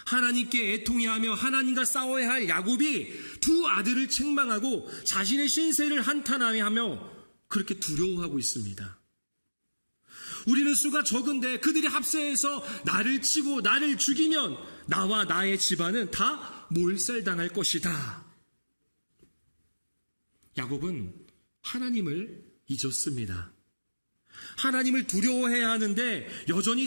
하나님께 애통해하며 하나님과 싸워야 할 야곱이 두 아들을 책망하고 자신의 신세를 한탄하며 그렇게 두려워하고 있습니다. 우리는 수가 적은데 그들이 합세해서 나를 치고 나를 죽이면 나와 나의 집안은 다 몰살당할 것이다. 야곱은 하나님을 잊었습니다. 하나님을 두려워해야 하는데 여전히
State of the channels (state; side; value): inverted; both; correlation -1.00